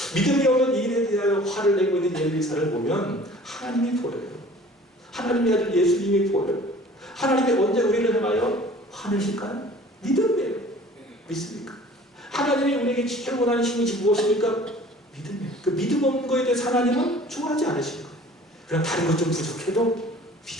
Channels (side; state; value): both; normal; correlation 0.48